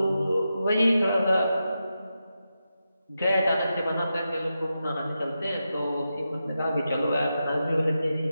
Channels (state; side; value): inverted; both; correlation -0.89